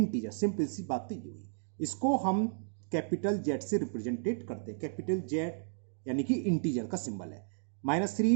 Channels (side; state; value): left; silent; digital silence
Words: सिंपल सी बात तो ये हुई. इसको हम कैपिटल जेड से रिप्रेजेंटेड करते हैं. कैपिटल जेड यानी कि इंटीजर का सिंबल है.